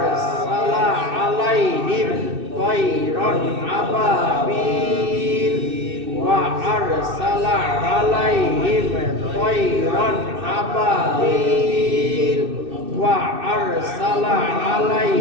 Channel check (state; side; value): late; left; 2.6 ms